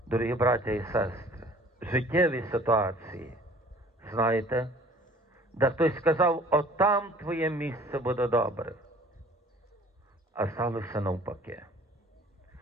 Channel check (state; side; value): normal; both; correlation 0.51